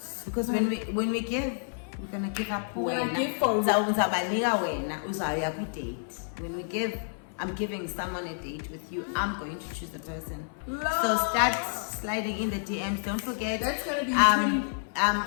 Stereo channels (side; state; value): right; silent; 58 dB below the other